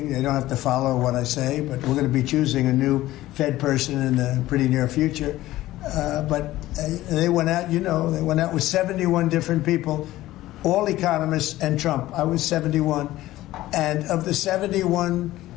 They don't have to follow what I say, but we're going to be choosing a new Fed person in the pretty near future. But they went out, you know, they went out with 71 different people, all economists and Trump. I was 71. And of the 71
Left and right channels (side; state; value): right; quieter; 15.9 dB